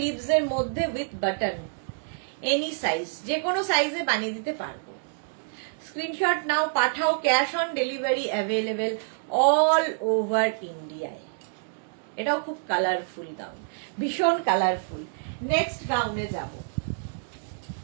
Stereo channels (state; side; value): silent; left; digital silence